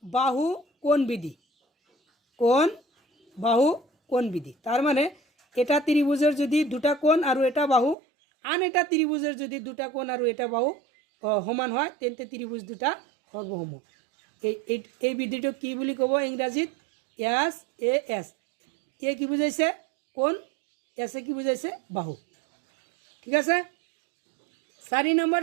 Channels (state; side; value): drops out; left; at 8.0 s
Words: বাহু কোণ বিধি কোণ বাহু কোণ বিধি তার মানে এটা ত্রিভুজের যদি দুটা কোণ আর এটা বাহু আন এটা ত্রিভুজের যদি দুটা কোণ আর এটা বাহু সমান হয় তেন্তে ত্রিভুজ দুটা সর্বসম এই বিধিটো কি বুলি ক'ব ইংৰাজীত এছ এ এছ এ কি বুজাইছে কোণ এছে কি বুজাইছে বাহু ঠিক আছে 4 নম্বৰ